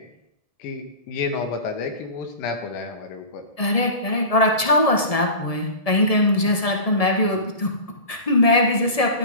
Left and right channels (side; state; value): right; late; 1.7 ms